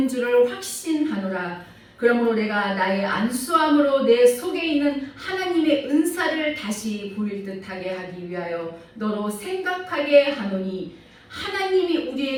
줄을 확신하노라. 그러므로 내가 나의 안수함으로 내 속에 있는 하나님의 은사를 다시 보일 듯하게 하기 위하여 너로 생각하게 하노니 하나님이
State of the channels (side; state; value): both; identical; correlation 1.00